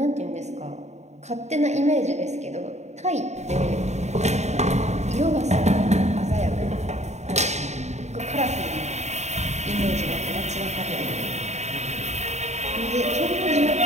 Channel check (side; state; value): left; late; 0.33 ms